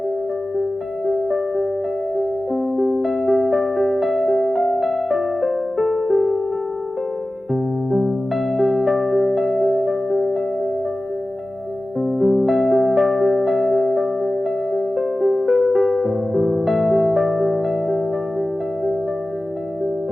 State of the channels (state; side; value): normal; both; correlation 0.96